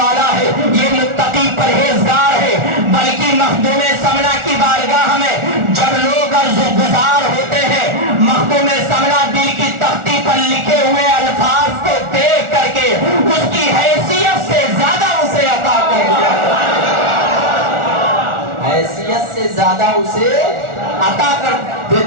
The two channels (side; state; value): left; late; 1.4 ms